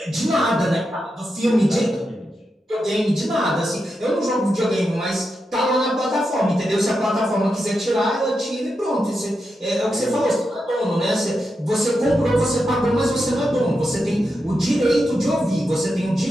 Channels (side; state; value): both; normal; correlation 0.87